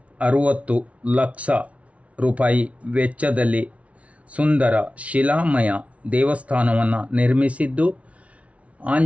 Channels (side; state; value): left; late; 0.064 ms